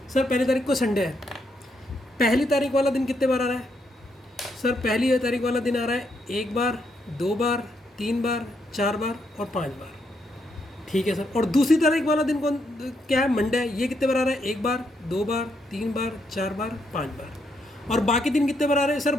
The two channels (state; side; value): normal; both; correlation 0.77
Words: सर? पहली तारीख को संडे है। पहली तारीख वाला दिन कितने बार आ रहा है सर? पहली तारीख वाला दिन आ रहा है 1 बार, 2 बार, 3 बार, 4 बार और 5 बार। ठीक है सर। और दूसरी तारीख वाला दिन कौन क्या है? मंडे है। ये कितने बार आ रहा है? 1 बार, 2 बार, 3 बार, 4 बार, 5 बार। और बाकी दिन कितने बार आ रहे हैं सर?